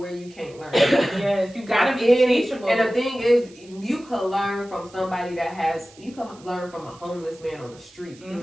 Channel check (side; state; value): right; noise; hiss, 25 dB below the sound